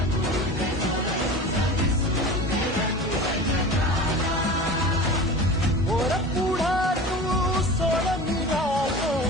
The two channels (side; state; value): both; normal; correlation 0.35